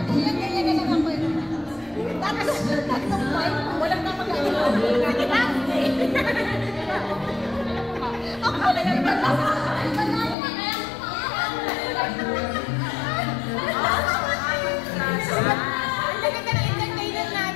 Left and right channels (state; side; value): drops out; right; at 10.4 s